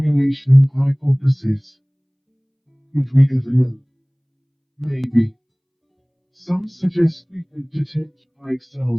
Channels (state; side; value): identical; both; correlation 1.00